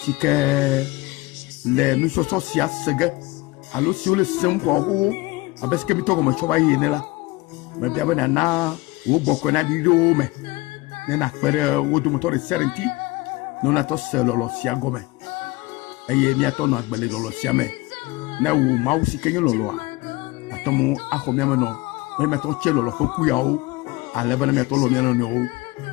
Sike le nous sommes sia sege. Allo si le sem ko ho abeske bi to ko ma choba yene la. Me bia be na wo boko na di do me. Ne na pere wo do motor serenti. Non na to selo lo sia gome. Eye mi ato no agbele lo sia me. Na wo ma wo si kenye lolo a. Atomo akomi me no. Me me to che lolo foku ya o. Ale bana me to lo mi no no.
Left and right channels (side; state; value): right; quieter; 21.4 dB